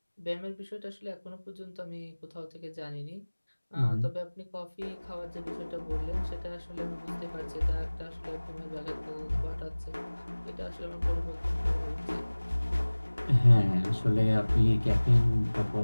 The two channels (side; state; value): both; inverted; correlation -1.00